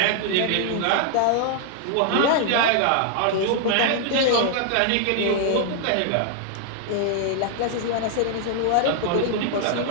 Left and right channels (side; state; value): both; different; correlation 0.00